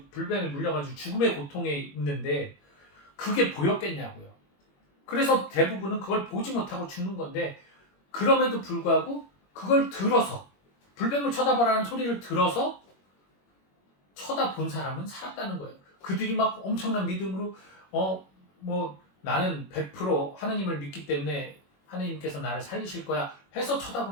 불뱀에 물려가지고 죽음의 고통에 있는데 그게 보였겠냐고요. 그래서 대부분은 그걸 보지 못하고 죽는 건데 그럼에도 불구하고 그걸 들어서 불뱀을 쳐다봐라는 소리를 들어서 쳐다본 사람은 살았다는 거예요. 그들이 막 엄청난 믿음으로 뭐 나는 100% 하느님을 믿기 때문에 하느님께서 나를 살리실 거야 해서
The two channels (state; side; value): late; right; 21 ms